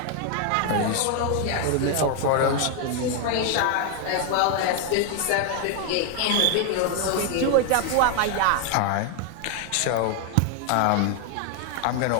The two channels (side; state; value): both; different; correlation 0.01